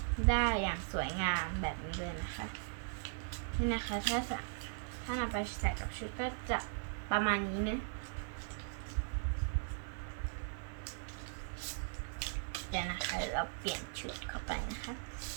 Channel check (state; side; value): silent; left; digital silence